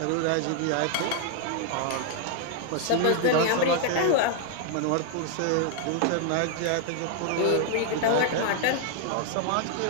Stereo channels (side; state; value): both; different; correlation 0.00